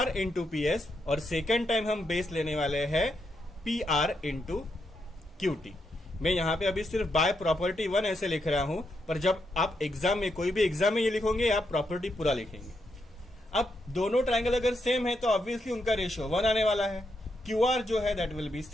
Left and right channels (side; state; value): both; normal; correlation 0.81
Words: इंटू PS, और सेकेंड टाइम हम बेस लेने वाले हैं PR इंटू QT। मैं यहाँ पे अभी सिर्फ बाय प्रॉपर्टी 1 ऐसे लिख रहा हूं, पर जब आप एग्जाम में, कोई भी एग्जाम में ये लिखोगे, आप प्रॉपर्टी पूरा लिखेंगे। अब दोनों ट्रायंगल अगर सेम है तो ऑब्वियसली उनका रेशियो 1 आने वाला है। QR जो है that will be